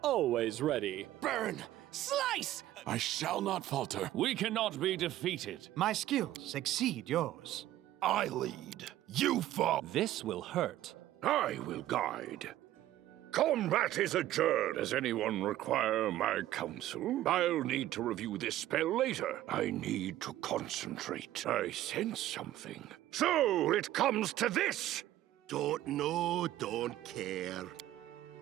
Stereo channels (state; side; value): quieter; left; 14.0 dB